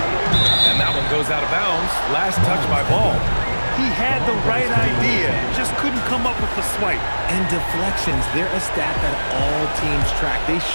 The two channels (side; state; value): both; inverted; correlation -1.00